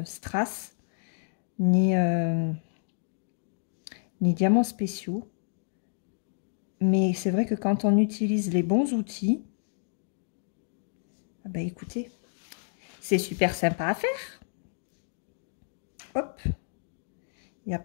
Strass, ni diamants spéciaux. Mais c'est vrai que quand on utilise les bons outils, ah bah écoutez, c'est super sympa à faire. Hop, il n'a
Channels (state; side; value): silent; right; digital silence